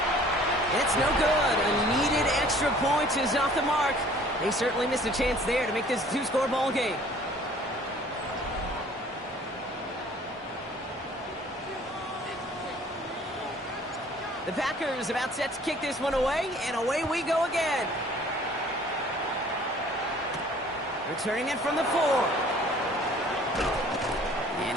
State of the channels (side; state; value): both; normal; correlation 0.53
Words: It's no good. A needed extra point is off the mark. They certainly missed a chance there to make this a 2-score ball game. The Packers about set to kick this one away, and away we go again. Returning it from the 4. And